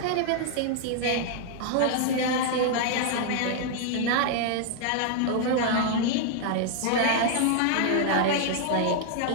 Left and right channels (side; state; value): both; different; correlation -0.01